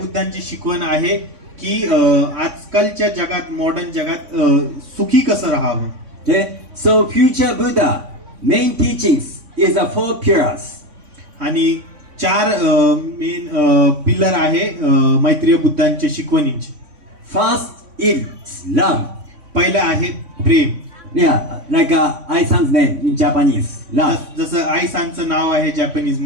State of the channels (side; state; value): left; late; 3.6 ms